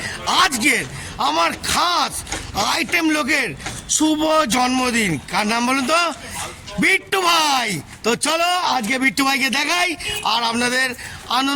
আজকের আমার খাস আইটেম লোকের শুভ জন্মদিন। কার নাম বলুন তো? বিট্টু ভাই। তো চলো আজকে বিট্টু ভাইকে দেখাই আর আপনাদের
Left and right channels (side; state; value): both; identical; correlation 1.00